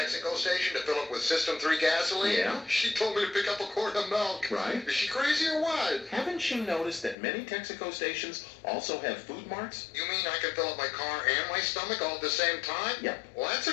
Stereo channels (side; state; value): right; drops out; at 7.2 s